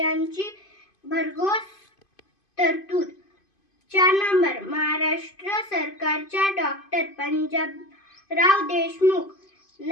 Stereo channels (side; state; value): right; late; 2.5 ms